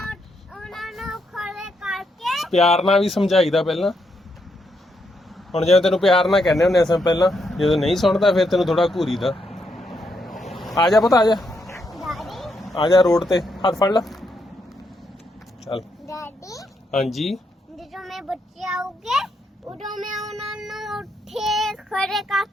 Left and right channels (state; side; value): normal; both; correlation 0.79